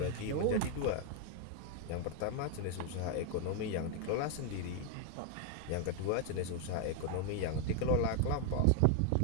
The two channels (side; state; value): both; different; correlation 0.00